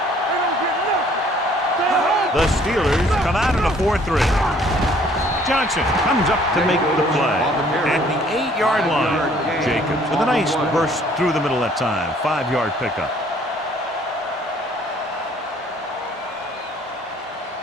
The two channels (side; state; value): both; normal; correlation 0.59